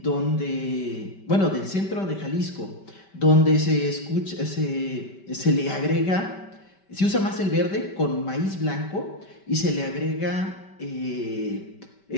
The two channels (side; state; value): right; late; 5.1 ms